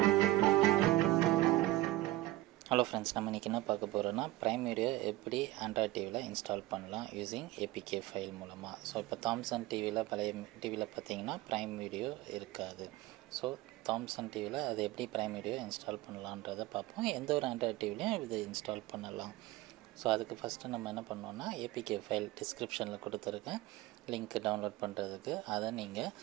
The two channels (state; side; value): quieter; left; 17.6 dB